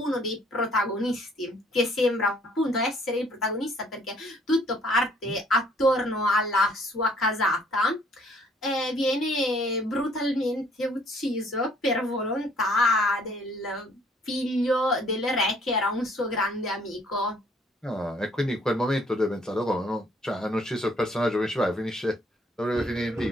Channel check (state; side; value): normal; both; correlation 0.61